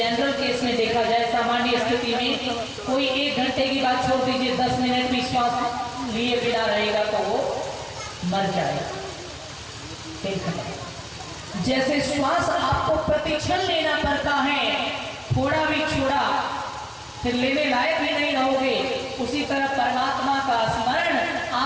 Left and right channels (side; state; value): both; identical; correlation 1.00